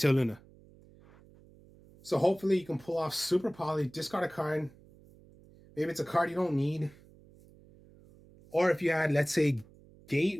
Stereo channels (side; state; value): right; noise; hum, 25 dB below the sound